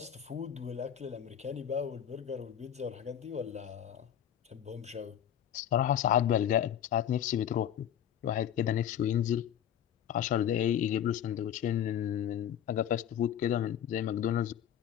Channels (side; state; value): right; quieter; 9.9 dB